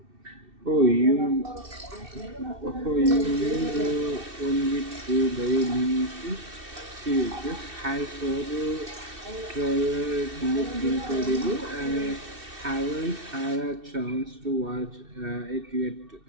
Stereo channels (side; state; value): left; late; 2.6 ms